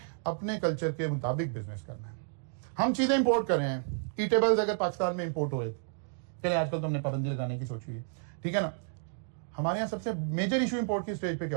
अपने कल्चर के मुताबिक बिजनेस करना है। हम चीजें इंपोर्ट कर रहे हैं। ईटेबल्स अगर पाकिस्तान में इंपोर्ट हो, चले आजकल तो हमने पाबंदी लगाने की सोची है, ठीक है ना। हमारे यहाँ सबसे मेजर इशू इंपोर्ट की स्टेज पे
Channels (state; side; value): silent; left; digital silence